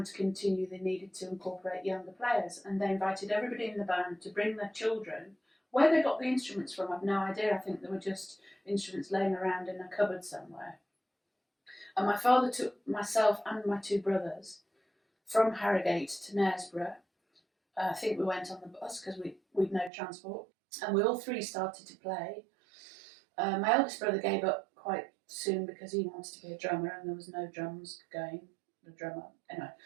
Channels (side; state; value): left; drops out; at 19.9 s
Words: to continue they needed to incorporate younger players, and they invited everybody in the band to bring their children. Where they got the instruments from, I've no idea. I think they were just instruments laying around in a cupboard somewhere. And my father took myself and my 2 brothers from Harrogate to Knaresborough. I think we went on the bus because we'd no transport, and we all 3 started to play. My eldest brother gave up quite soon because he wanted to be a drummer, and there was no drums going. The drummer, anyway.